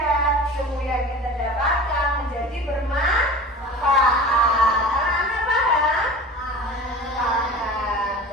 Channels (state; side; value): normal; both; correlation 0.37